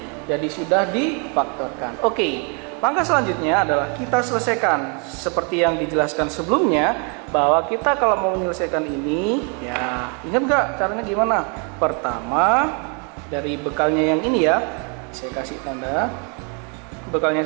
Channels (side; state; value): left; quieter; 36.4 dB